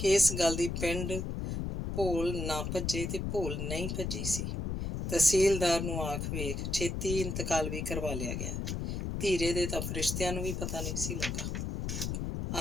ਇਸ ਗੱਲ ਦੀ ਪਿੰਡ ਭੋਲ ਨਾ ਭੱਜੇ ਤੇ ਭੋਲ ਨਹੀਂ ਭੱਜੀ ਸੀ। ਤਹਿਸੀਲਦਾਰ ਨੂੰ ਆਖ ਵੇਖ, ਛੇਤੀ ਇੰਤਕਾਲ ਵੀ ਕਰਵਾ ਲਿਆ ਗਿਆ। ਧੀਰੇ ਦੇ ਤਾਂ ਫਰਿਸ਼ਤਿਆਂ ਨੂੰ ਵੀ ਪਤਾ ਨਹੀਂ ਸੀ ਲੱਗਾ।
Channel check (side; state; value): left; noise; rumble, 2 dB below the sound